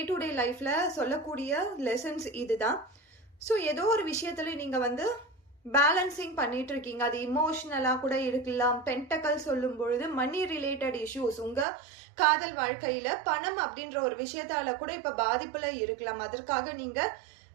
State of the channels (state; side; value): drops out; left; at 11.7 s